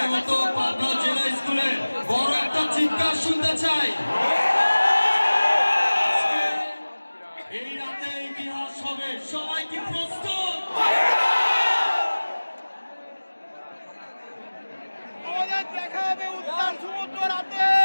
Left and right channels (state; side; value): inverted; both; correlation -1.00